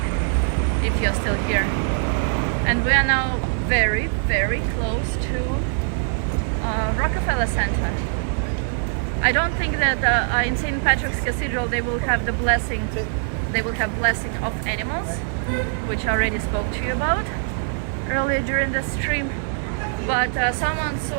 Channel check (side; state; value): left; silent; 64 dB below the other